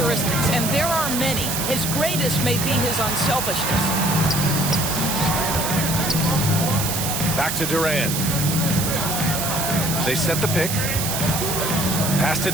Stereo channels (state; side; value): noise; right; hiss, 2 dB below the sound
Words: and there are many, his greatest may be his unselfishness. Back to Durant. They set the pick. Pass to